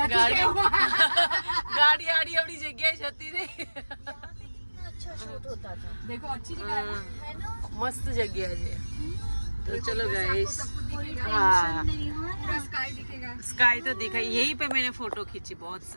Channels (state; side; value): inverted; both; correlation -1.00